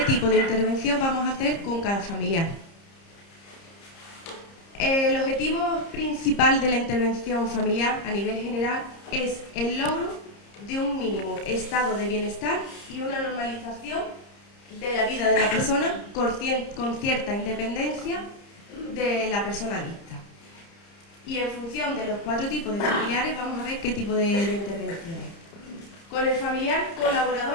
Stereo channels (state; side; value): late; right; 30 ms